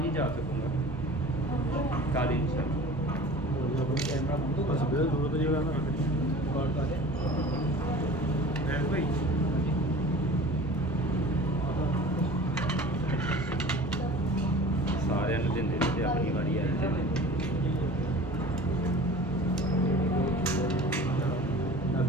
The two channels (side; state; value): both; normal; correlation 0.41